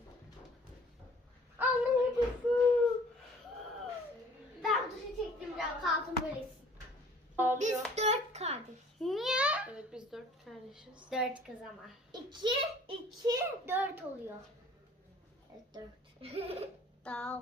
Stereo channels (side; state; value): both; normal; correlation 0.52